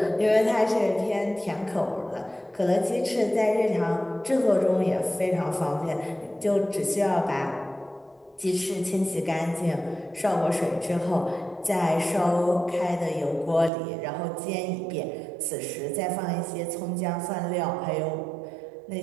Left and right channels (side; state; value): left; drops out; at 13.7 s